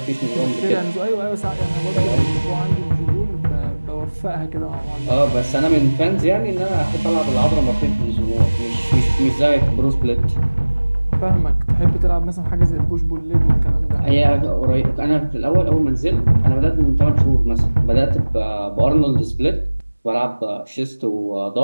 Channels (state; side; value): inverted; both; correlation -1.00